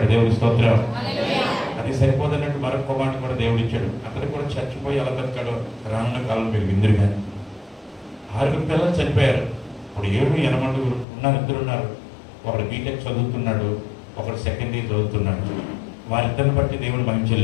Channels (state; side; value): drops out; right; at 11.1 s